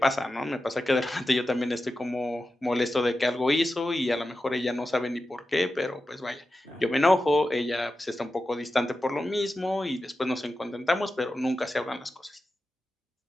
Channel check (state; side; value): normal; both; correlation 0.92